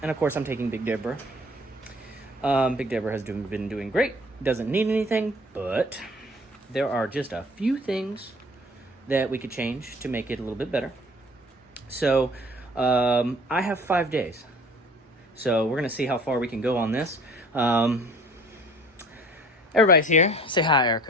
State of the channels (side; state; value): both; normal; correlation 0.50